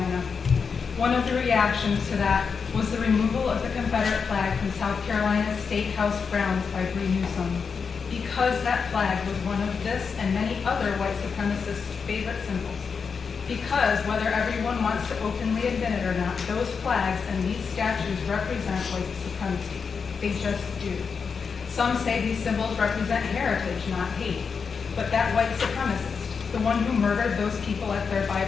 One of the reactions to that was the removal of the Confederate flag from South Carolina's State House grounds by Bree Newsom, because that flag was one of this and many other white supremacists' favorite symbols. Because whether everyone wants to openly admit it or not, those flags and these statues represent white supremacy. They just do. Some say these symbols represent heritage, not hate. But that white supremacist, the one who murdered those people at their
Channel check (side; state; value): right; quieter; 5.7 dB